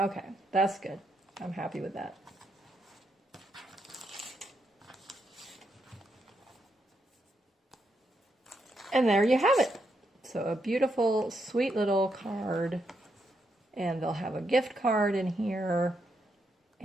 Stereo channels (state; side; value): normal; both; correlation 0.80